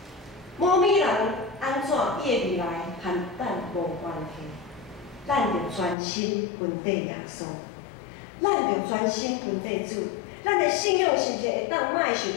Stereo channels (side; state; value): right; drops out; at 6.0 s